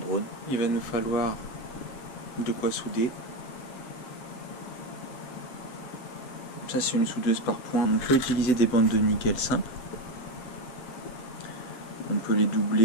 Il va nous falloir de quoi souder. Ça, c'est une soudeuse par point. On peut utiliser des bandes de nickel simples. On peut les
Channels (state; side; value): late; right; 8.0 ms